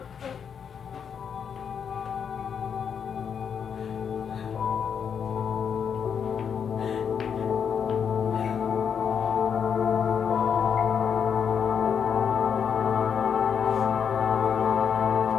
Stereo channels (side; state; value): right; quieter; 7.3 dB